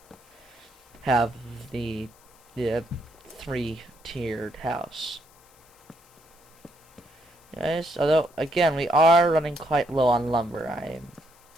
have the three-tiered house. Yes, although again we are running quite low on lumber.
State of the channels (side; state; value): left; noise; hiss, 29 dB below the sound